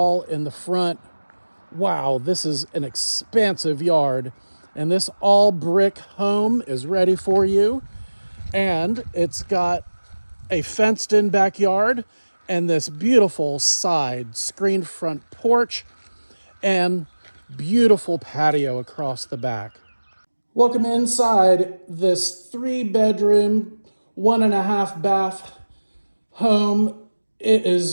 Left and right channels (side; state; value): both; inverted; correlation -1.00